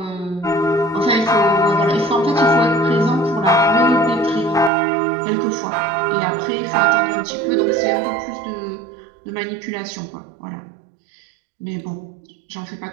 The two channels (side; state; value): left; drops out; at 4.7 s